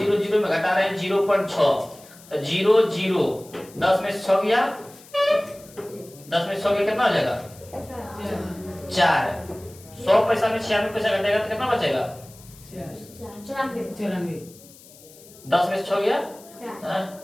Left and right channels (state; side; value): noise; left; hiss, 22 dB below the sound